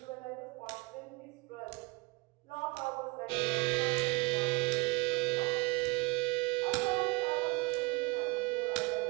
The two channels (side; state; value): left; quieter; 25.8 dB